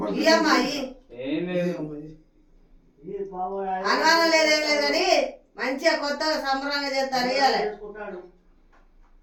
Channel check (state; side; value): identical; both; correlation 1.00